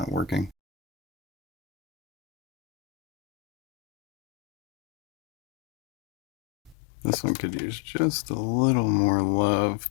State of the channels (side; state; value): right; drops out; at 6.8 s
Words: working. This one could use just a little more love,